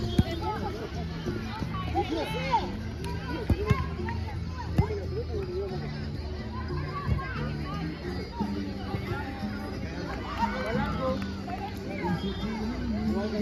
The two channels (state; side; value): identical; both; correlation 1.00